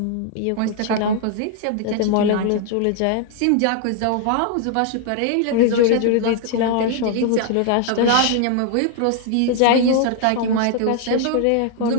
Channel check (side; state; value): both; different; correlation 0.00